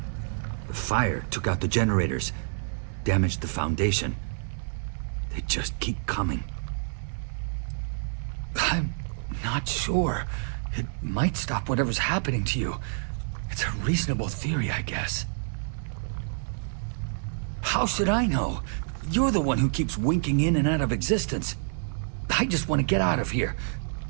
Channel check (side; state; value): left; silent; 59 dB below the other